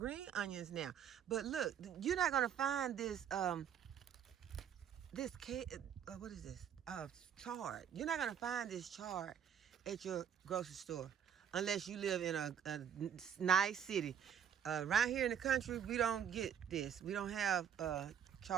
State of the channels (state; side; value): quieter; left; 8.7 dB